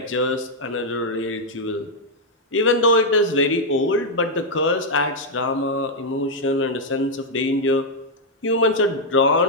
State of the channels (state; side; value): normal; both; correlation -0.02